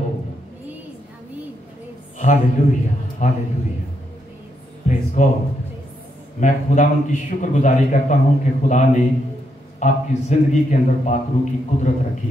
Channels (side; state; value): both; normal; correlation 0.79